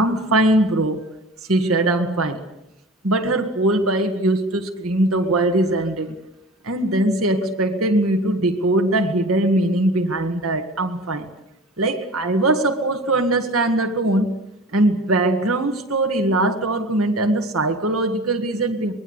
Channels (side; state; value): both; normal; correlation 0.39